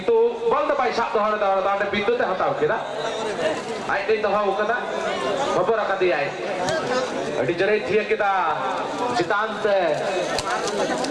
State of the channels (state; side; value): identical; both; correlation 1.00